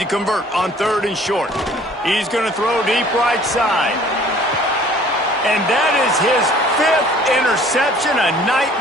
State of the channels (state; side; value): normal; both; correlation 0.53